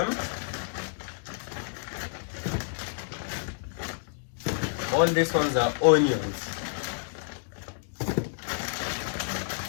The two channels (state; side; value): silent; right; digital silence